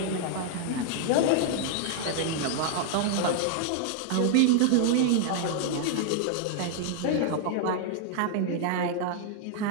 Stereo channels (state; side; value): different; both; correlation 0.00